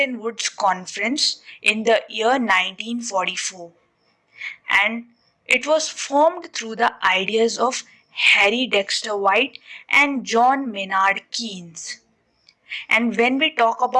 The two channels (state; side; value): identical; both; correlation 1.00